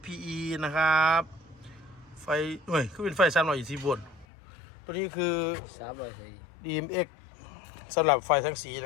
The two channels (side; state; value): right; drops out; at 4.2 s